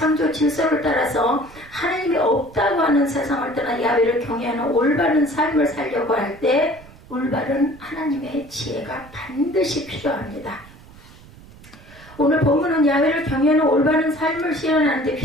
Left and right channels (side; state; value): right; noise; rumble, 22 dB below the sound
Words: 질서를 따라서 하나님이 없다고 하는 세상을 떠나 야훼를 경외하는 올바른 삶을 살려고 할 때 올바른 하나님의 지혜가 반드시 필요합니다. 오늘 본문은 야훼를 경외하는 올바른 삶을 실현하는 데